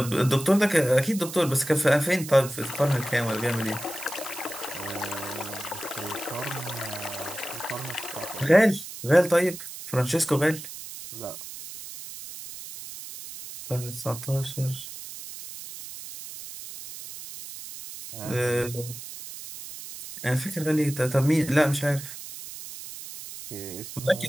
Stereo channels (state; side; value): noise; right; hiss, 11 dB below the sound